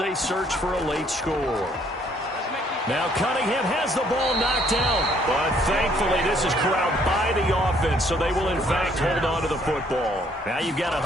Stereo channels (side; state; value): both; normal; correlation 0.65